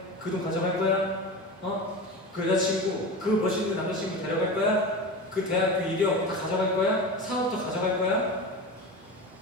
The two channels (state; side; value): normal; both; correlation 0.27